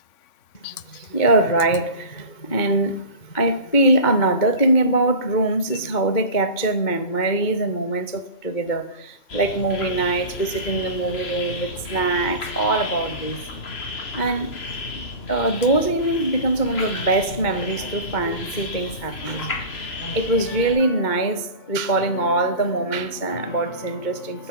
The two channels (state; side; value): late; right; 2.2 ms